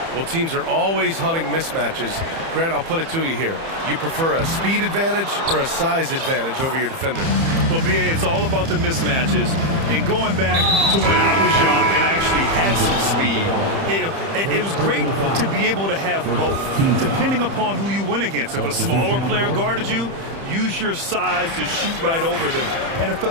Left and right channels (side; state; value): left; late; 30 ms